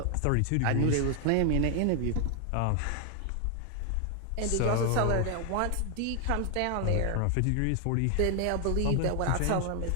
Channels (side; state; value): both; different; correlation 0.00